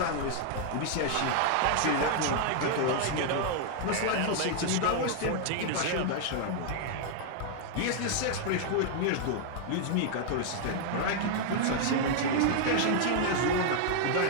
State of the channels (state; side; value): different; both; correlation 0.00